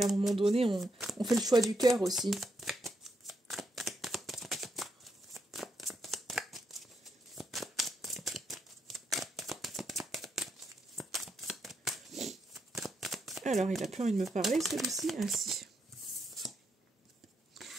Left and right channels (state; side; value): normal; both; correlation 0.80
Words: un moment donné, on fait le choix du cœur aussi. Alors, il a plus envie de me parler, celui-ci. Ah, si.